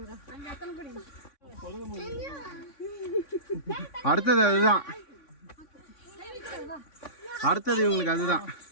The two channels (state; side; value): late; right; 3.6 ms